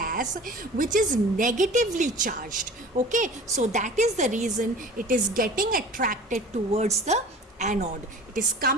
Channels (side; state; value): both; normal; correlation 0.41